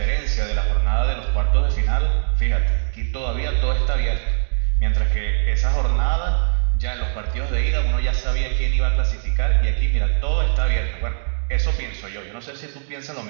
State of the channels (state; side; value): silent; left; digital silence